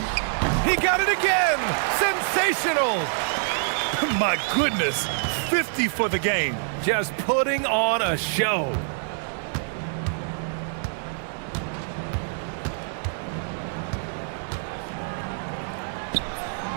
He got it again! Sensational! My goodness, 50 for the game. Just putting on a show.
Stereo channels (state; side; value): silent; left; digital silence